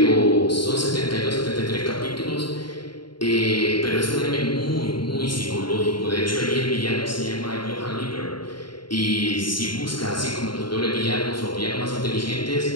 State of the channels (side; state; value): right; late; 0.72 ms